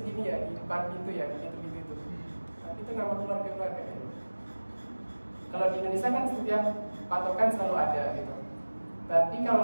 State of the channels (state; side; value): inverted; both; correlation -1.00